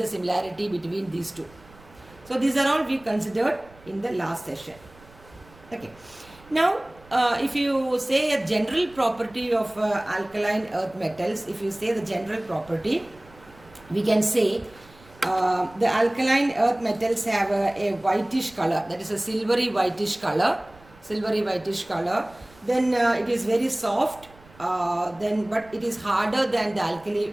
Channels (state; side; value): noise; right; rumble, 25 dB below the sound